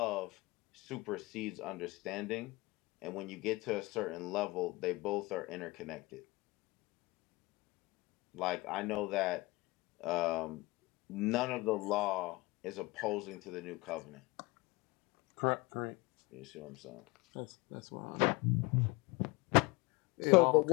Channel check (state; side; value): quieter; right; 23.1 dB